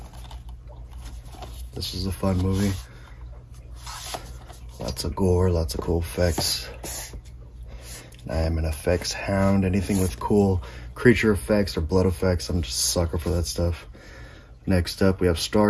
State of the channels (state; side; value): identical; both; correlation 1.00